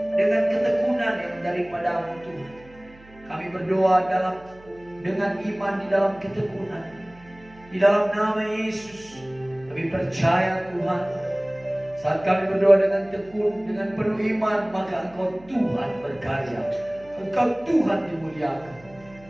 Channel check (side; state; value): right; noise; hum, 24 dB below the sound